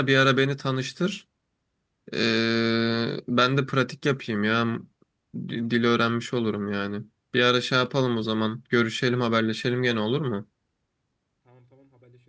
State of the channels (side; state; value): both; identical; correlation 1.00